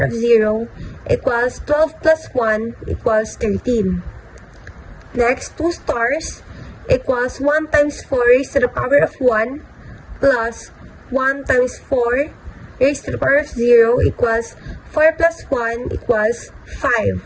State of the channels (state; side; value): identical; both; correlation 1.00